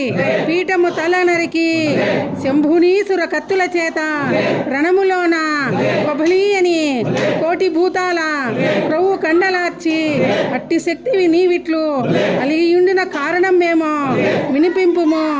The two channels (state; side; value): identical; both; correlation 1.00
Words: పీఠము తల నరికి శంభునీసుర కత్తుల చేత రణములోన కొబలి అని కోటి భూతాల క్రొవ్వు కండలార్చి అట్టి శక్తివి నీవిట్లు అలిగియుండిన కారణం మేము వినిపింపుము